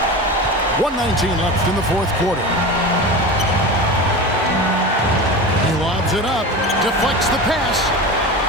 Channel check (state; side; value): normal; both; correlation 0.28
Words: 1:19 left in the fourth quarter. He lobs it up, deflects the pass.